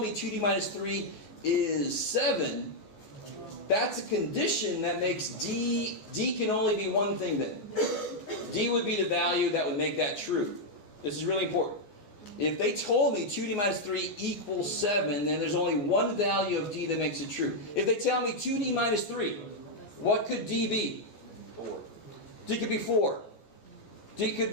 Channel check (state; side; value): late; right; 15 ms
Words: 2d minus 3 is 7, that's a condition that makes d can only be one thing then. D would be the value that would make that true. This is really important. If they told me 2d minus 3 equals 7, then there's only one value of d that makes it true. If they tell me 2d minus 3, what could d be? 4. D could be 4. D could